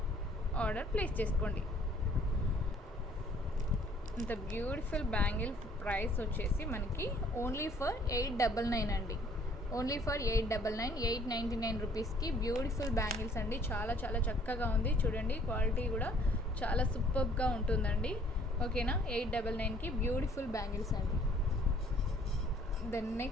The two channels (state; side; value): normal; both; correlation 0.59